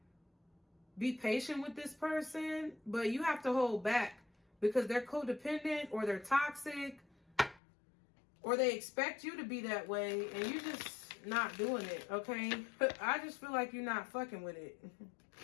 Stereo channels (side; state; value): right; drops out; at 7.6 s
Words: be patient with this person, but you have to hold back because they're codependent or they're toxic or they expect you to be that way and you're just not doing it, okay? I just feel like you're not fucking with it.